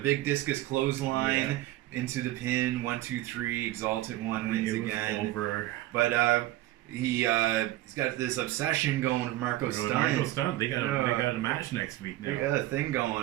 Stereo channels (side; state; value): left; quieter; 15.9 dB